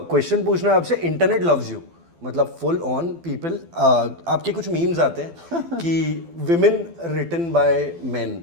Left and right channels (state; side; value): late; left; 12 ms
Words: पूछना है आपसे. इंटरनेट लव्स यू, मतलब फुल ऑन पीपल. आपके कुछ मीम्स आते हैं कि विमेन रिटन बाय मेन,